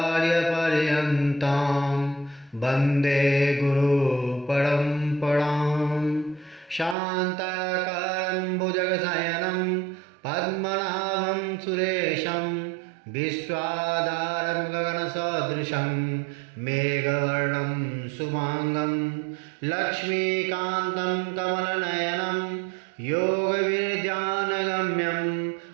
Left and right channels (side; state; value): left; drops out; at 7.0 s